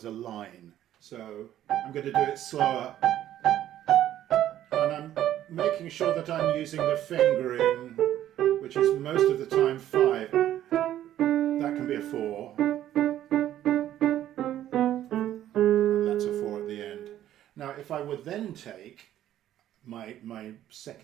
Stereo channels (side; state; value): left; quieter; 12.2 dB